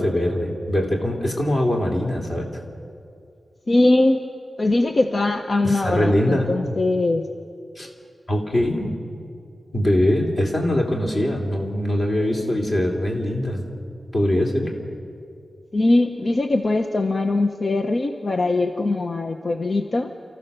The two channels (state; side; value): normal; both; correlation 0.95